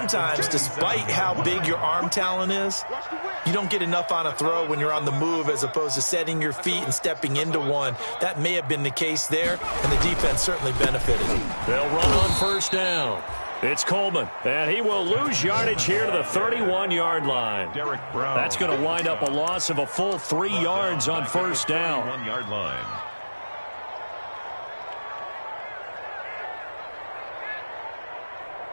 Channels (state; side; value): inverted; both; correlation -1.00